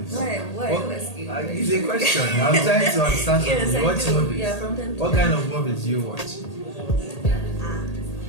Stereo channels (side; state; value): right; late; 1.8 ms